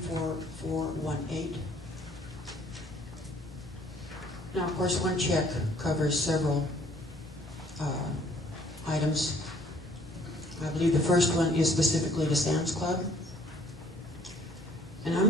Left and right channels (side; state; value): both; normal; correlation 0.59